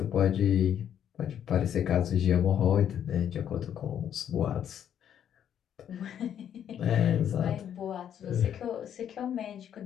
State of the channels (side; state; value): right; quieter; 9.5 dB